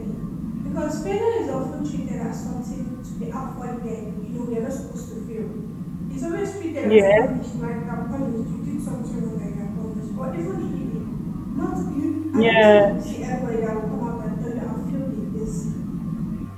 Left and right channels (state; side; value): identical; both; correlation 1.00